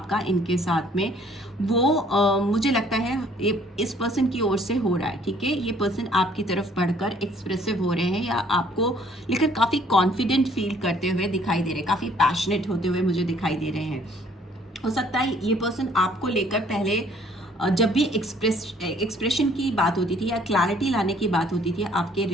इनके साथ में, वो मुझे लगता है ये इस पर्सन की ओर से हो रहा है। ठीक है, ये पर्सन आपकी तरफ बढ़कर एक्सप्रेसिव हो रहे हैं या आपको लेकर काफ़ी कॉन्फिडेंट फील करते हुए दिखाई दे रहे हैं, काफ़ी पैशनेट होते हुए मुझे दिखाई दे रहे हैं। हो सकता है ये पर्सन आपको लेकर पहले जब भी एक्सप्रेशन की बात होती थी या क्लैरिटी लाने की बात होती थी आपके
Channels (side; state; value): both; normal; correlation 0.60